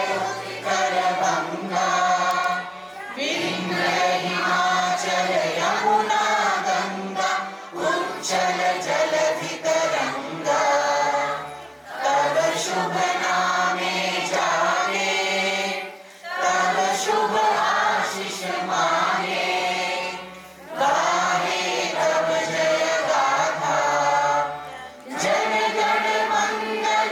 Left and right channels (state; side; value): identical; both; correlation 1.00